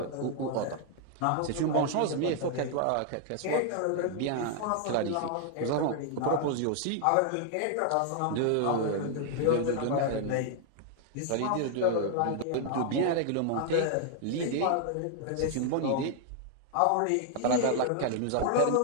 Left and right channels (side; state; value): both; different; correlation 0.00